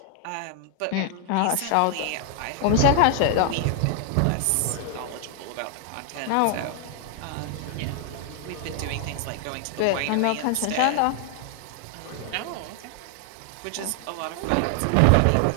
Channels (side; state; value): both; different; correlation 0.00